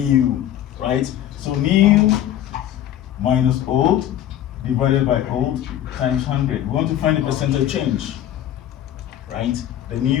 right? So new minus old divided by old times 100. We want to find the percentage change, right? The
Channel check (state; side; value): quieter; right; 11.6 dB